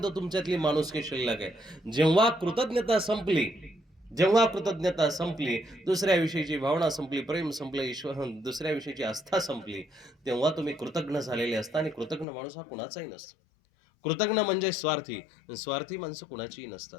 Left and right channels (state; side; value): drops out; right; at 12.2 s